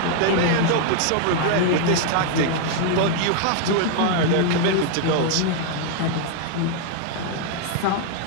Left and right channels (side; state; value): both; different; correlation 0.00